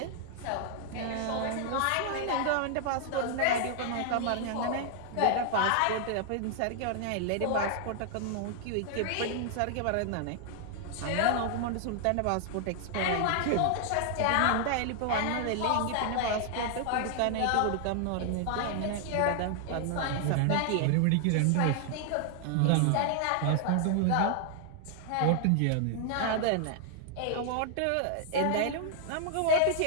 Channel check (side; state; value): both; different; correlation 0.00